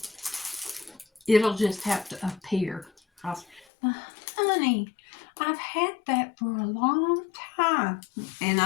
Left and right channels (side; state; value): right; drops out; at 3.7 s